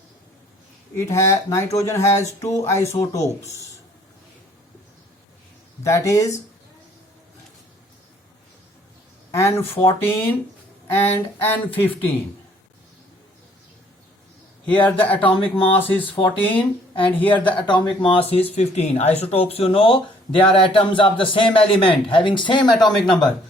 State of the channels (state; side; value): normal; both; correlation 0.60